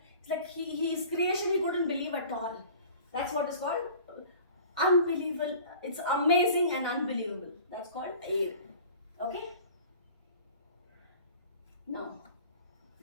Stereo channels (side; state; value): both; inverted; correlation -0.45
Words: it's like his creation he couldn't believe at all. That's what is called unbelievable. It's amazing and unbelievable. That's called awe. Okay? Now